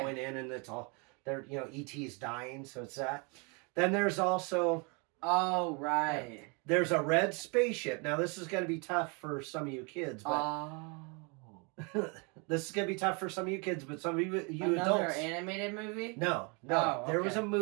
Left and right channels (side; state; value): left; quieter; 32.3 dB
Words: in and it's all E.T.'s dying, so it's that. Then there's also there's a red spaceship. Now this is going to be tough for some of you kids, but This is gonna be tough for some of you kids, but some of you Another adults. animated movie? No. Oh, There was okay. a